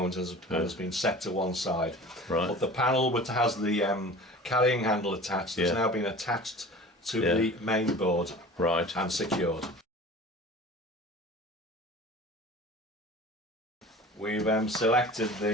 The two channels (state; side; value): normal; both; correlation 0.40